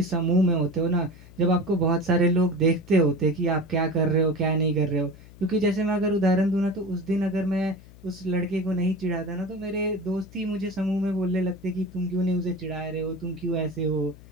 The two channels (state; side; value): noise; left; hum, 21 dB below the sound